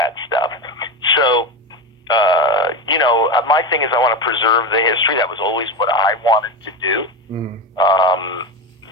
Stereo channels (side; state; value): both; normal; correlation 0.19